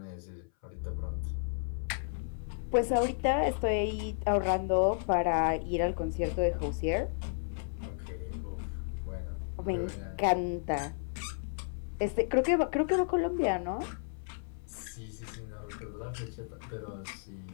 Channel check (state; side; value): silent; right; 56 dB below the other